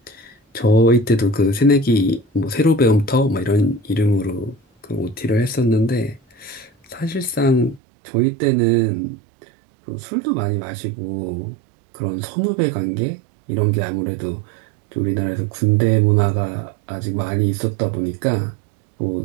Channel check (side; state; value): left; drops out; at 7.8 s